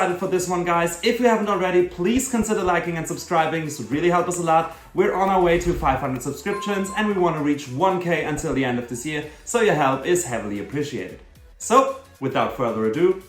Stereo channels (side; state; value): both; identical; correlation 1.00